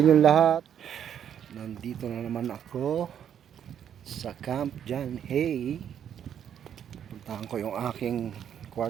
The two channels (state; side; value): quieter; left; 9.1 dB